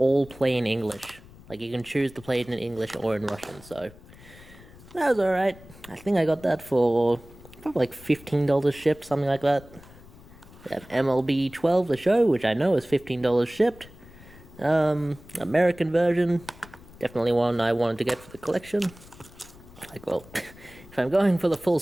play in English. Like, you can choose to play it in English or in Russian, so that was alright. I think I got that for probably like $15 shipped, something like that. We have MLB 12, the show, which I know is $15 shipped. American version, definitely one I wanted to get for the collection. Like, well, if I'm going for the full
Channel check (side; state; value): left; noise; rumble, 21 dB below the sound